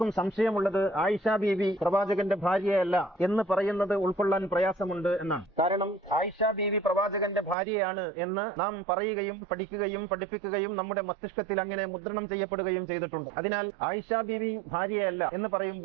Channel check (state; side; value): drops out; left; at 7.6 s